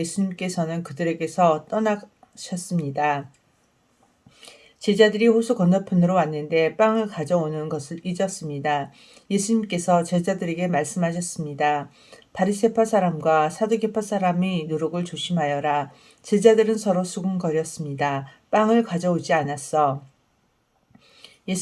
그들에게서 떠나셨습니다. 제자들이 호수 건너편으로 왔는데 빵을 가져오는 것을 잊었습니다. 예수님께서 제자들에게 말씀하셨습니다. 바리새파 사람과 사두개파 사람이 누룩을 조심하여라. 제자들은 서로 수군거렸습니다. 빵을 가져오지 않았어.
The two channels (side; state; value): both; identical; correlation 1.00